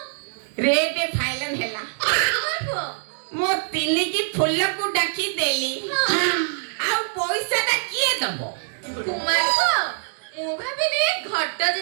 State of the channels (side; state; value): left; silent; digital silence